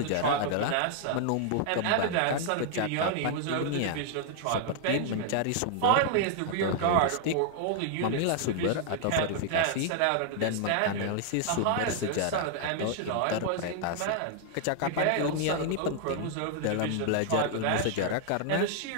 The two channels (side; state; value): both; different; correlation 0.00